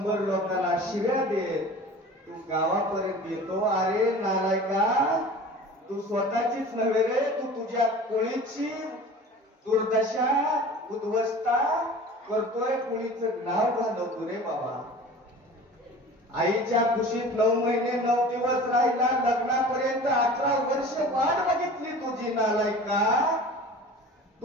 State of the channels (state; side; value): normal; both; correlation 0.40